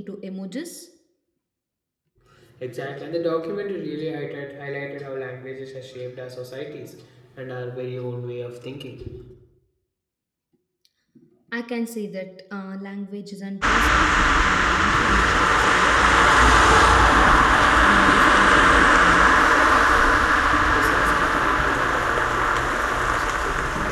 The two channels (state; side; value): identical; both; correlation 1.00